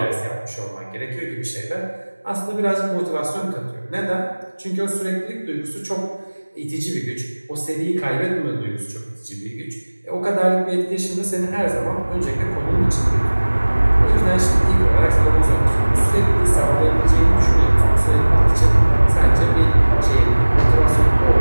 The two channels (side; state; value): both; inverted; correlation -1.00